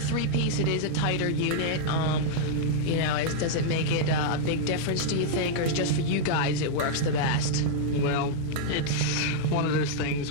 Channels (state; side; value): different; both; correlation -0.02